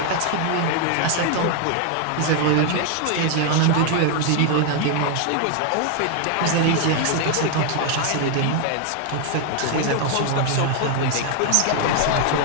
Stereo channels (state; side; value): different; both; correlation 0.00